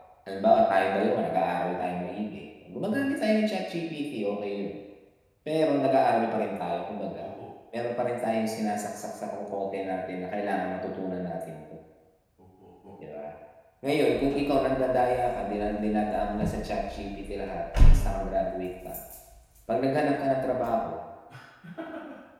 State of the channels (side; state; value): both; identical; correlation 1.00